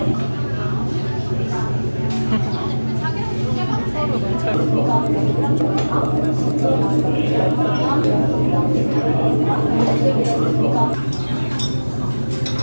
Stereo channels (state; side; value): inverted; both; correlation -1.00